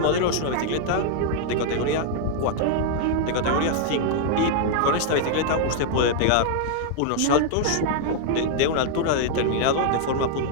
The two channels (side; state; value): both; different; correlation 0.00